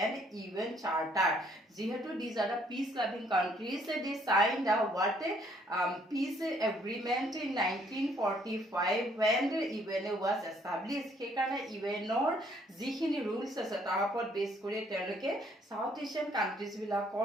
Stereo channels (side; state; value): both; normal; correlation 0.65